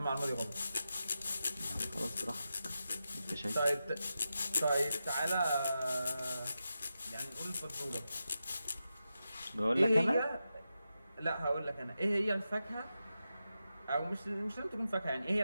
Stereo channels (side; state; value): both; inverted; correlation -0.90